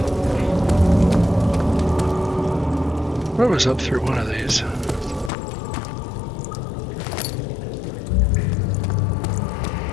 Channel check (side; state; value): right; drops out; at 5.3 s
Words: What was up through one of these?